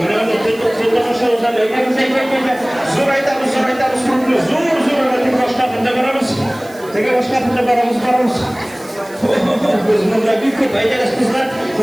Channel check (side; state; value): right; noise; hiss, 22 dB below the sound